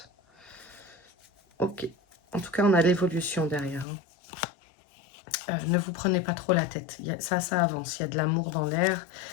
Ok. En tout cas, on a l'évolution derrière. Hein. Ne vous prenez pas trop la tête. Ça avance. Il y a de l'amour dans l'air.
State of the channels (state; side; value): drops out; right; at 3.9 s